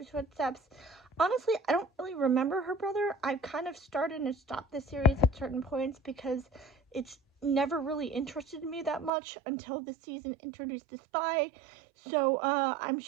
footsteps. Honestly, I don't really remember her brother. I've kind of started and stopped the series at certain points because it's never really interested me that much until the season introduced the spy. So I'm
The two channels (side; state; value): left; drops out; at 9.1 s